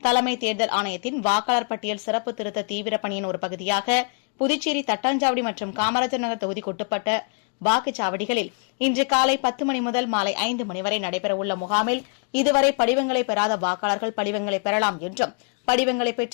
தேர்தல் ஆணையத்தின் வாக்காளர் பட்டியல் சிறப்பு திருத்த தீவிர பணியின் ஒரு பகுதியாக புதுச்சேரி தட்டாஞ்சாவடி மற்றும் காமராஜர் நகர் தொகுதிக்குட்பட்ட வாக்குச்சாவடிகளில் இன்று காலை 10 மணி முதல் மாலை 5 மணி வரை நடைபெறவுள்ள முகாமில் இதுவரை படிவங்களை பெறாத வாக்காளர்கள் படிவங்களை பெறலாம் என்றும் படிவங்களை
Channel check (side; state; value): right; quieter; 38.7 dB